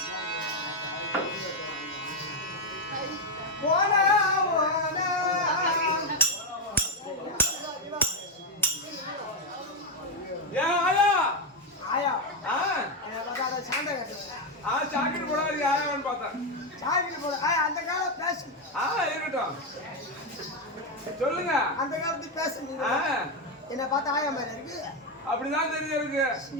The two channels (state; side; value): normal; both; correlation 0.06